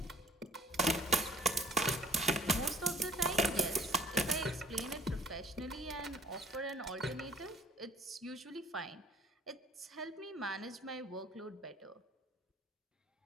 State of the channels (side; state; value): both; normal; correlation 0.55